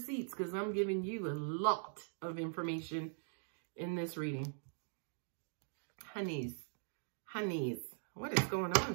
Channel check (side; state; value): left; silent; digital silence